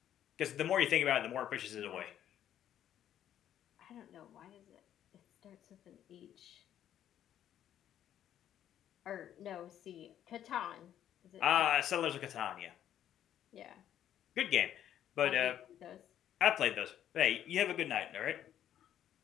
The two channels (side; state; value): right; quieter; 10.8 dB